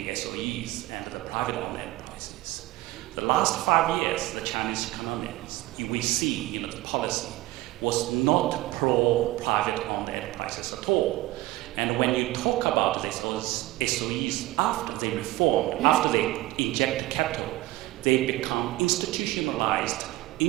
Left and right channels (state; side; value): quieter; left; 18.3 dB